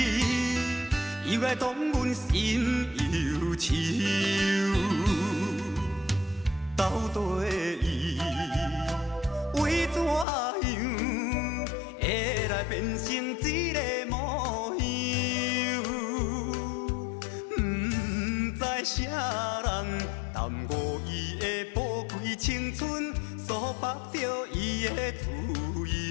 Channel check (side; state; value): right; drops out; at 10.2 s